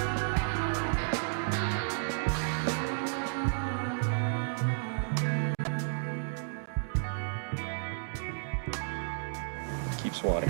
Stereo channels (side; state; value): left; silent; digital silence